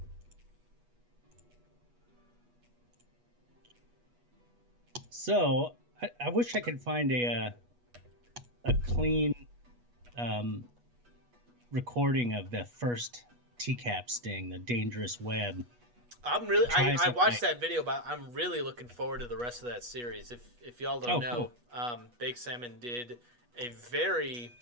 So I wish I could find a clean recording of the first TCAP sting, the dangerous web. I watched that video, but I'm really looking forward to the rest of that series. If y'all don't know, cool. Big Salmon did a very.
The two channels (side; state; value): left; late; 8.3 ms